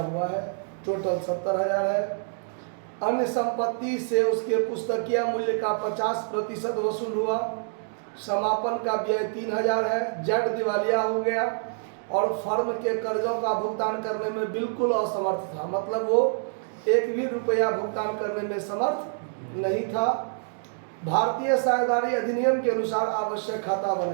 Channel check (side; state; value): left; silent; digital silence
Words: है। टोटल 70,000 है। अन्य संपत्ति से उसके पुस्तकीय मूल्य का 50% वसूल हुआ। समापन का व्यय 3,000 है। जेड दिवालिया हो गया और फर्म के कर्जों का भुगतान करने में बिल्कुल असमर्थ था, मतलब वो 1 भी रुपया भुगतान करने में समर्थ नहीं था। भारतीय साझेदारी अधिनियम के अनुसार आवश्यक खाता